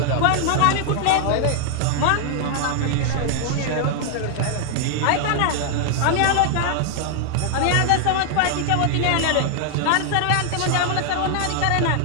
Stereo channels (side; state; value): both; different; correlation 0.00